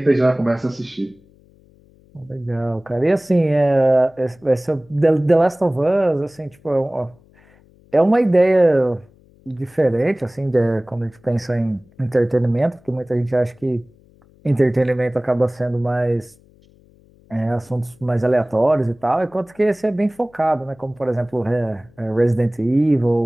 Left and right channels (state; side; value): noise; left; hum, 29 dB below the sound